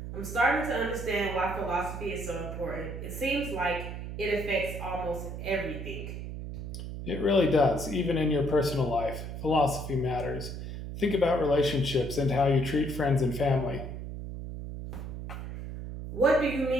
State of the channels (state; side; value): noise; right; hum, 7 dB below the sound